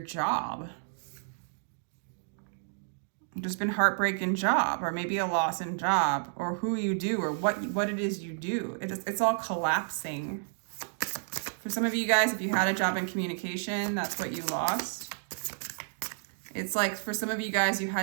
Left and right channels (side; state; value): left; silent; digital silence